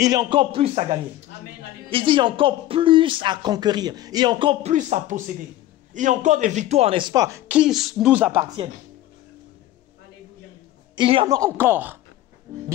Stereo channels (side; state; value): right; quieter; 14.5 dB